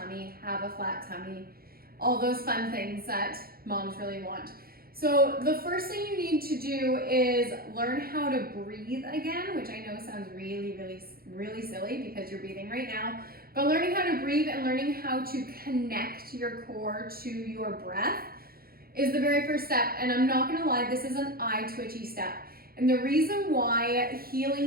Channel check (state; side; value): late; left; 0.44 ms